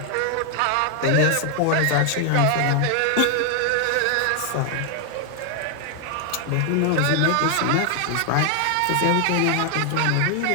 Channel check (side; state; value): both; different; correlation 0.00